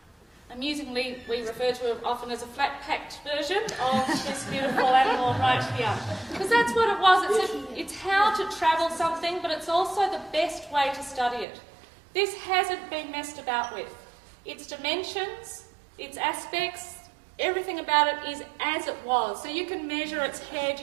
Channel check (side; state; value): left; drops out; at 11.5 s